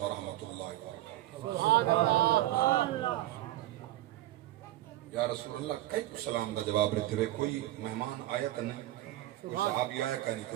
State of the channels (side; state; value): left; quieter; 15.7 dB